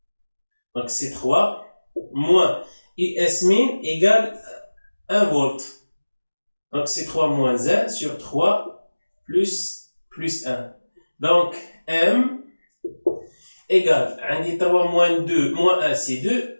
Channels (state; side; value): inverted; both; correlation -1.00